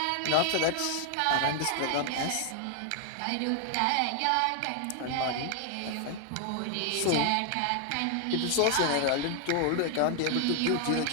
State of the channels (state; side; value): different; both; correlation 0.00